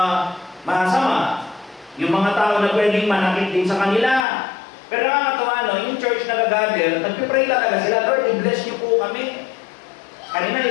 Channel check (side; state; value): right; drops out; at 4.2 s